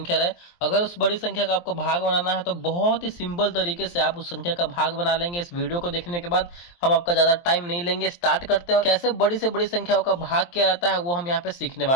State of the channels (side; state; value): right; late; 23 ms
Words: रहे, अगर उस बड़ी संख्या का आपको भाग बनाना है तो बहुत ही सिंपल तरीके से आप उस संख्या का भाग बना लेंगे। इस वीडियो को देखने के बाद हम आपका ज्यादा टाइम नहीं लेंगे, स्टार्ट करते हैं। और कैसे बड़ी से बड़ी संख्याओं का भाग किया जाता है वो हम यहाँ पे सीखने